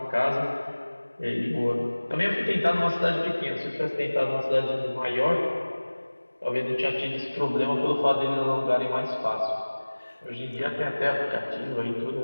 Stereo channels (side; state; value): both; inverted; correlation -1.00